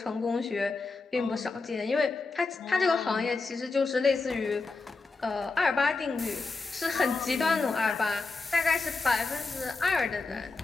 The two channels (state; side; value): quieter; right; 3.9 dB